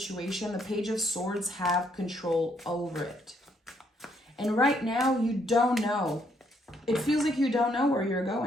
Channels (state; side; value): normal; both; correlation 0.71